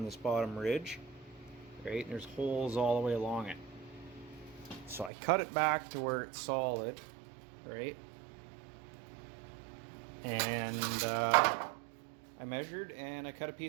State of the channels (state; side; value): drops out; left; at 5.1 s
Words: this bottom ridge, right? And there's holes all the way along it. So I cut it back to where it's solid, right? And I measured and I cut a